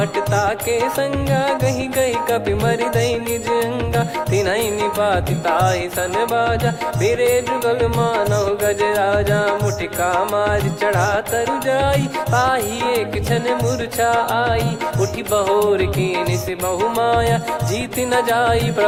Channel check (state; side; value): identical; both; correlation 1.00